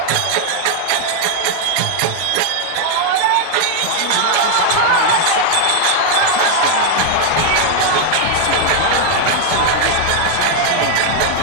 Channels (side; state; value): both; different; correlation 0.00